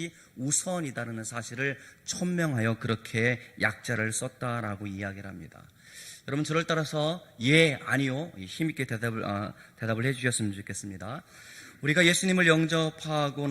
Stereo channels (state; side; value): identical; both; correlation 1.00